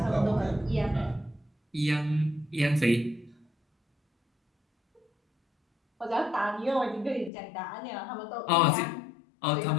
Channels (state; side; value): drops out; right; at 7.3 s